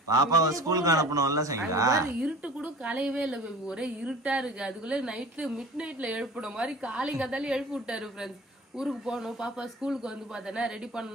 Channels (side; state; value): both; normal; correlation 0.40